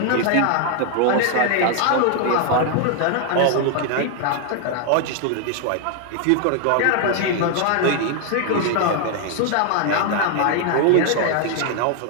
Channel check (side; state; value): both; different; correlation 0.00